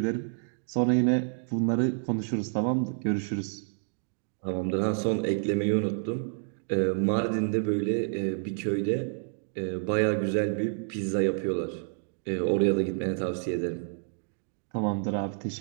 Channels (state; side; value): silent; left; 59 dB below the other